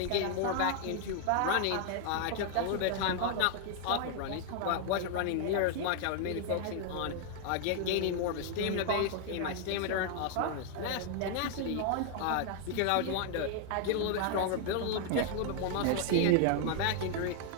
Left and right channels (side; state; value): both; different; correlation 0.00